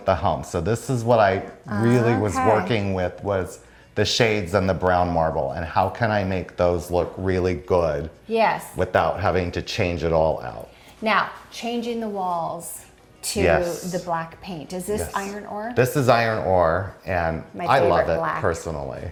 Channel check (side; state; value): both; identical; correlation 1.00